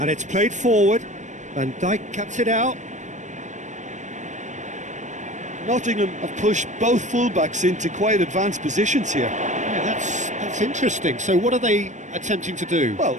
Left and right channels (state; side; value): late; left; 0.35 ms